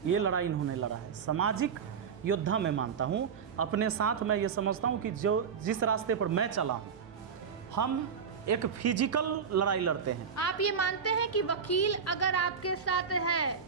ये लड़ाई इन्होंने लड़ा है। सामाजिक योद्धा मैं मानता हूँ। अपने साथ मैं ये समझता हूँ कि जिस रास्ते पर मैं चला हूँ, हम एक फिजिकल लड़ाई लड़ते हैं। आप ये मानते हैं कि वकील अगर आपके साथ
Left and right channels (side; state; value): left; quieter; 6.5 dB